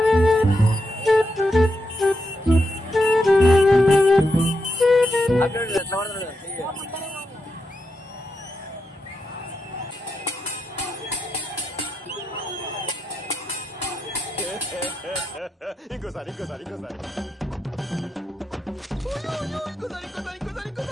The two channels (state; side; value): normal; both; correlation 0.85